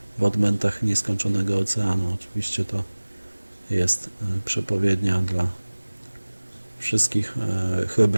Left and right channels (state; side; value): inverted; both; correlation -1.00